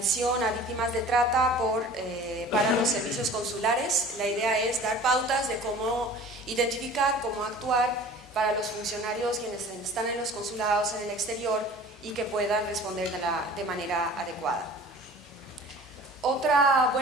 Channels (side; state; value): both; normal; correlation 0.44